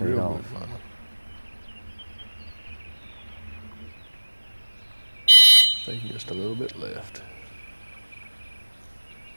Real off. good final. Taking just a little bit left.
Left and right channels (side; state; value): both; inverted; correlation -1.00